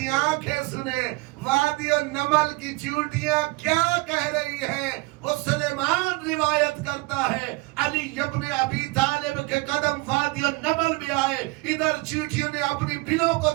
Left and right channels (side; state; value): left; quieter; 24.2 dB